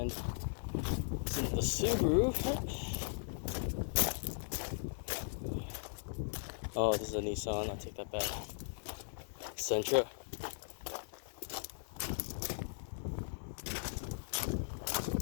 It's in the Subaru. Oh, this is a Nissan. I'll take that back. Sentra.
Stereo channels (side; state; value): right; silent; digital silence